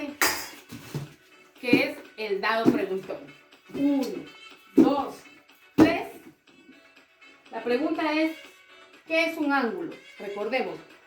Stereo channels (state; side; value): identical; both; correlation 1.00